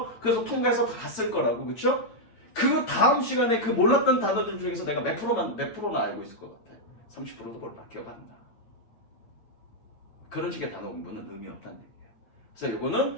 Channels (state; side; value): late; right; 9.0 ms